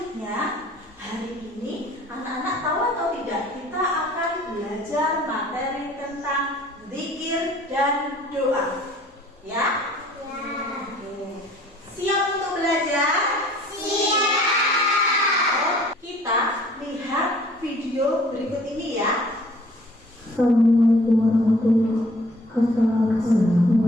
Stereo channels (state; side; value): normal; both; correlation 0.54